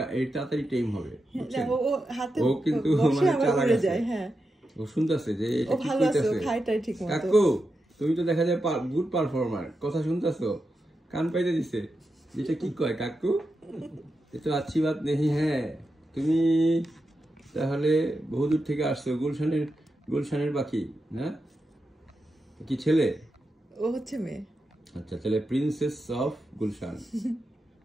এই তাড়াতাড়ি টাইম হবে। ও কিন্তু মানে চালাক আছে, ও শুনতেছে যে কাকু তুমি তো দেখা যায় গুড পারফর্মার, কথা শুনতেছো, কান পাইতে দিছে, যেটা কি কয় কাকু এ তো আচ্ছি বাত নেই। হ্যাঁ, তুমি তাহলে বহুদূর থেকে আসছো, গুলশানের বাকি, হ্যাঁ? কি ছেলে? ও হচ্ছে মেয়ে। আচ্ছা, তাহলে প্রিন্সেস অফ গুলশান।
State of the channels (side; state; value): both; normal; correlation 0.88